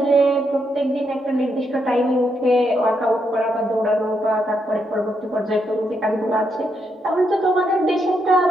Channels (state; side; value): normal; both; correlation 0.79